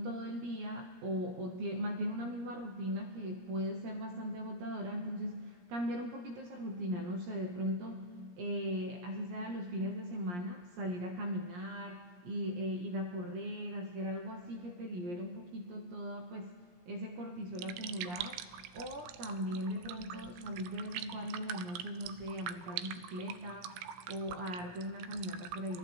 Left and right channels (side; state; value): left; late; 17 ms